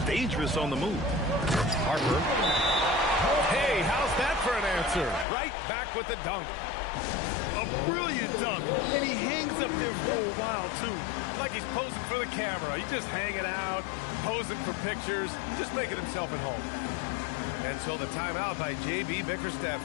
dangerous on the move. Harper. Hey, how's that for an answer? Right back with the dunk. A brilliant dunk, and he hangs up there for a while, too. Like he's posing for the camera. He's just hanging out, posing for pictures, just making himself at home. And so the timeout by J.B. Bickerstaff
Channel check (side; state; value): right; drops out; at 5.2 s